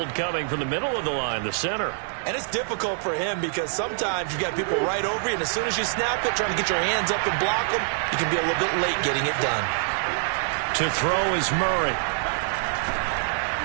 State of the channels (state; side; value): silent; left; digital silence